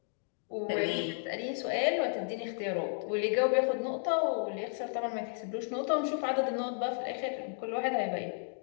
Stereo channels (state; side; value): silent; right; 56 dB below the other